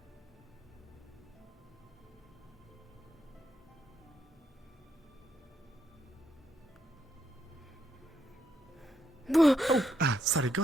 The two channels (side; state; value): both; normal; correlation 0.78